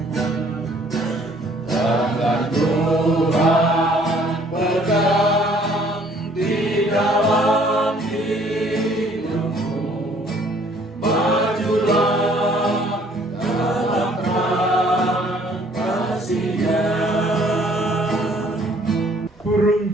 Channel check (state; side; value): normal; both; correlation 0.59